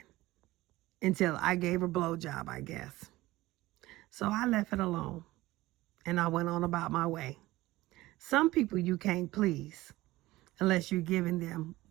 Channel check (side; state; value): left; quieter; 18.0 dB